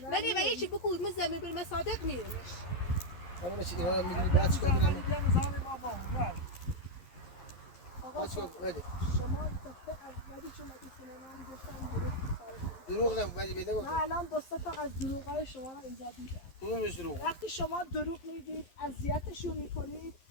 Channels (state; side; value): late; right; 11 ms